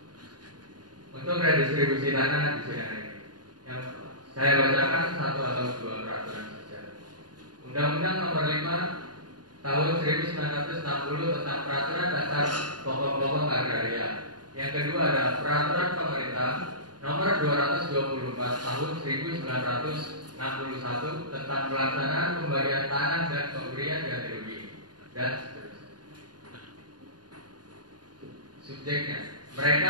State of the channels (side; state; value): left; late; 0.70 ms